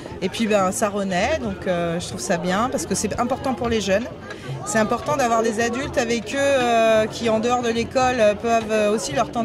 Et puis ça renaît, donc je trouve ça bien parce que c'est important pour les jeunes. C'est important d'avoir des adultes avec eux qui en dehors de l'école peuvent aussi leur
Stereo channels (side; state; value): both; identical; correlation 1.00